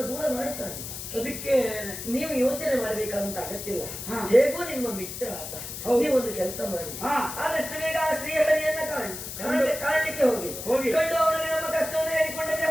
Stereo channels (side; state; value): left; noise; hiss, 8 dB below the sound